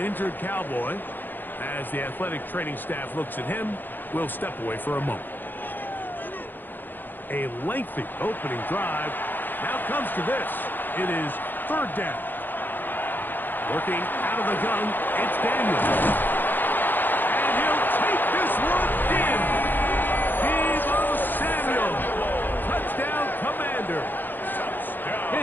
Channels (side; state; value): right; late; 0.089 ms